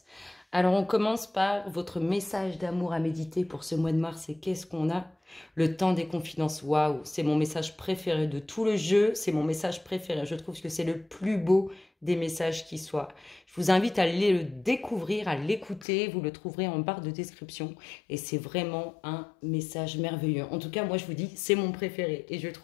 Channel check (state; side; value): drops out; right; at 15.9 s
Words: Alors on commence par votre message d'amour à méditer pour ce mois de mars. Et qu'est-ce qu'on a? Le temps des confidences. Waouh, c'est mon message préféré de tout le jeu, c'est mon message préféré. Je trouve que c'est le plus beau des messages qui soit. Je vous invite à aller le découvrir, à l'écouter, vous le trouverez en barre de description. Et c'est vraiment un message merveilleux. En tout cas, moi je vous dis, c'est mon préféré. Et je